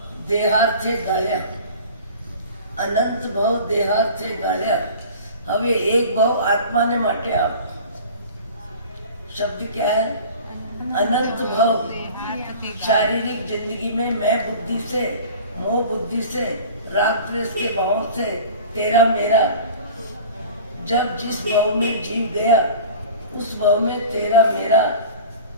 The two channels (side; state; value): both; inverted; correlation -0.40